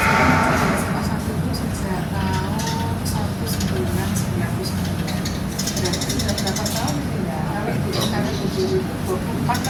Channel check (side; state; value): both; identical; correlation 1.00